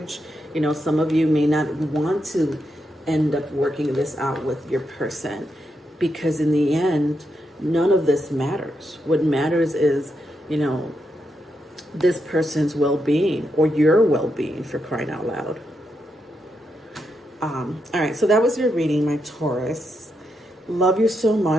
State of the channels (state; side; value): normal; both; correlation 0.83